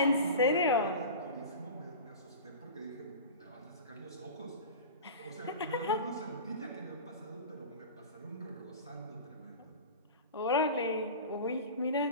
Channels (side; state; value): both; inverted; correlation -0.32